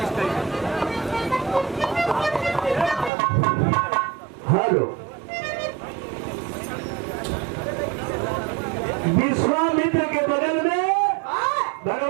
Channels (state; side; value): drops out; left; at 3.1 s